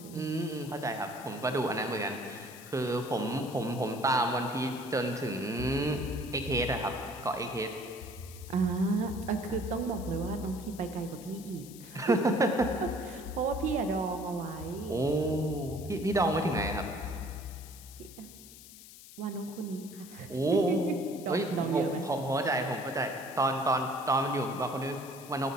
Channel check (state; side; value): noise; left; hiss, 17 dB below the sound